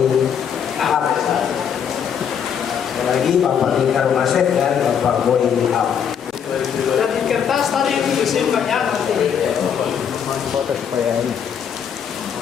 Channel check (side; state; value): right; quieter; 7.9 dB